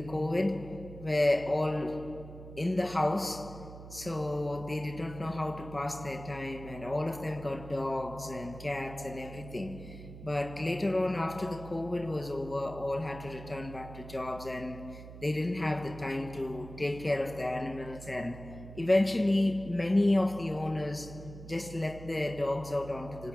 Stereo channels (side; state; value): right; noise; hum, 13 dB below the sound